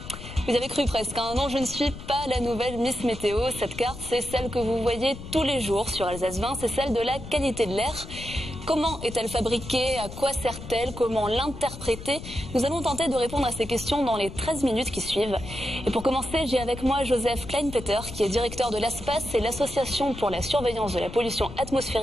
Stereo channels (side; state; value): left; noise; rumble, 12 dB below the sound